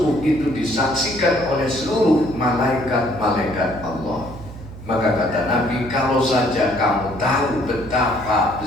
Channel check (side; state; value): right; noise; hum, 14 dB below the sound